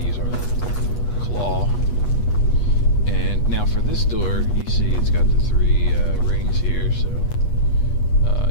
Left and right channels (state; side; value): late; right; 8.3 ms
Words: use our little claw. And now for this door, you see it's got the 3 rings here, so